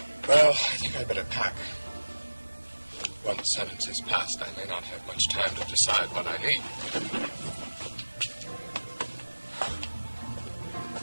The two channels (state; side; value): inverted; both; correlation -1.00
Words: Well, I think I'd better pack. Once sentence is passed, I may not have much time to decide what I need.